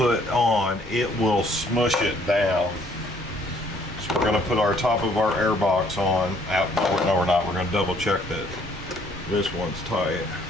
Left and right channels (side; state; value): both; normal; correlation 0.63